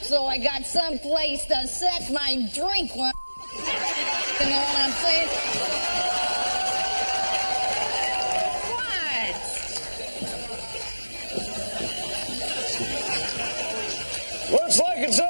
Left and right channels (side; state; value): both; inverted; correlation -1.00